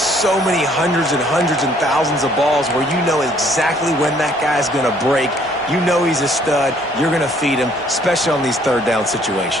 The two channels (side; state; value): both; normal; correlation 0.62